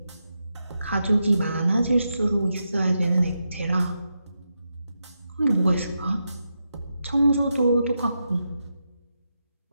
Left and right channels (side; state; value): both; inverted; correlation -0.86